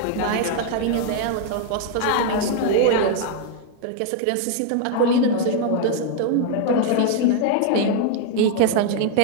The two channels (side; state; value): both; different; correlation 0.00